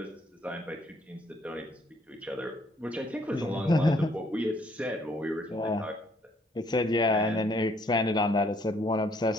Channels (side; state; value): both; normal; correlation 0.66